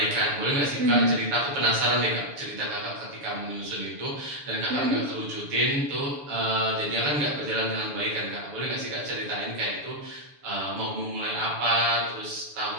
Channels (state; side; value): late; left; 6.9 ms